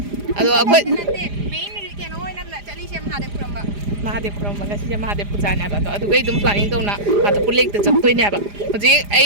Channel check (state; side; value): late; left; 4.9 ms